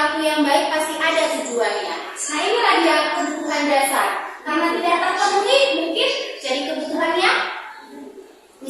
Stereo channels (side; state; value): both; identical; correlation 1.00